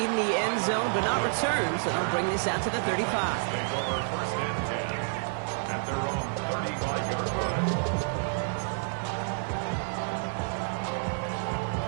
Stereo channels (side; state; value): left; silent; 58 dB below the other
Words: end zone, but not returned, so they'll bring this out to the 35. They go over 1st and 10 at their own 35-yard line.